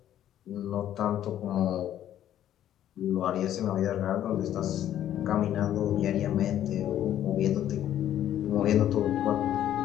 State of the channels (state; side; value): quieter; right; 11.5 dB